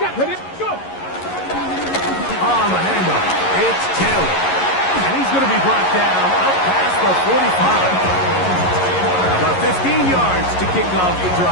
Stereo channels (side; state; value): right; late; 11 ms